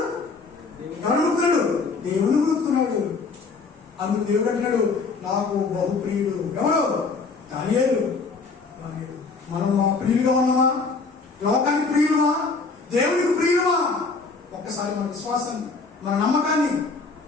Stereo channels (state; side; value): quieter; right; 4.3 dB